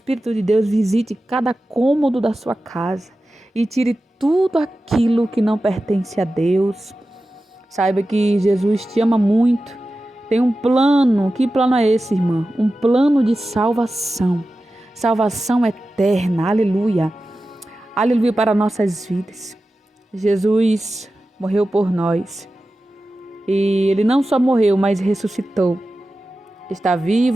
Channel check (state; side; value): normal; both; correlation 0.94